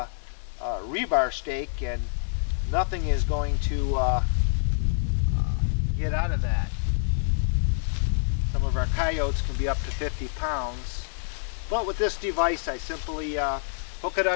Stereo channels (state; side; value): silent; right; digital silence